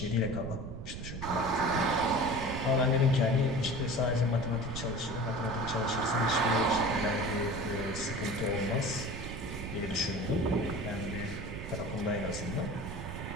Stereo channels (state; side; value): noise; right; rumble, 8 dB below the sound